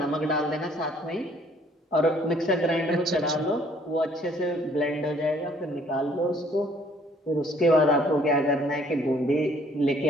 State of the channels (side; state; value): both; normal; correlation 0.61